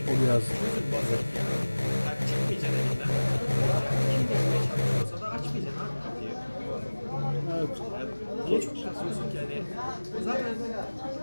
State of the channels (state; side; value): inverted; both; correlation -1.00